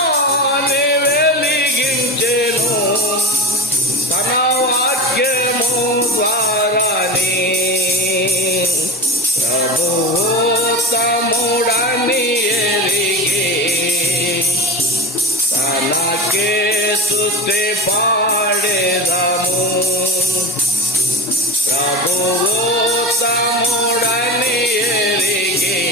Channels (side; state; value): both; normal; correlation 0.27